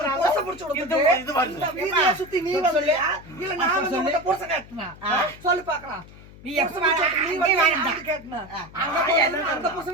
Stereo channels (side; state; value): left; noise; hum, 20 dB below the sound